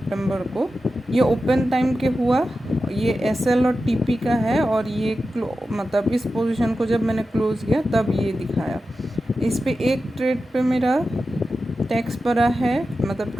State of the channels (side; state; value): both; normal; correlation 0.92